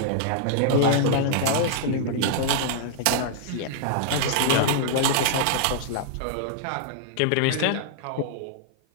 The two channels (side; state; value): both; different; correlation -0.01